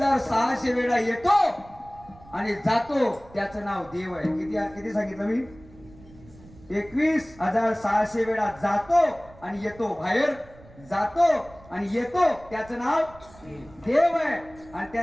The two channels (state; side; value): noise; right; rumble, 23 dB below the sound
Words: वेळा येतो आणि जातो, त्याचं नाव देव आहे. किती सांगितलं मी? 21,600 वेळा जातो आणि येतो, बाहेर जातो आणि येतो, त्याचं नाव देव आहे. आणि